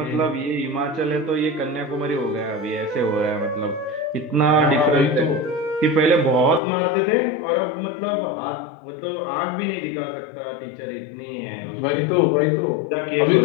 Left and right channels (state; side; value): drops out; right; at 6.6 s